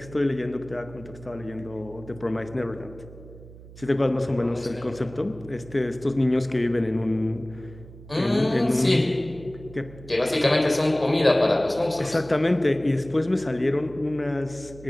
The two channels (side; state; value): right; noise; hum, 18 dB below the sound